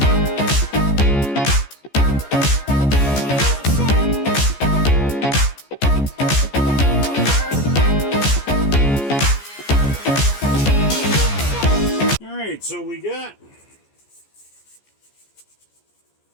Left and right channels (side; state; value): right; late; 14 ms